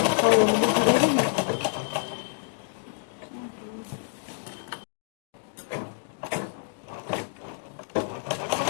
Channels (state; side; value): silent; right; digital silence